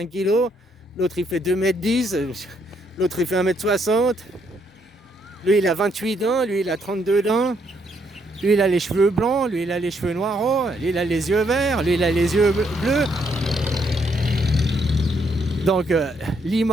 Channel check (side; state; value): both; normal; correlation 0.73